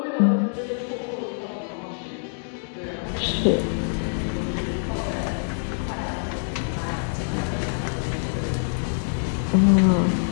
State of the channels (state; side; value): silent; right; digital silence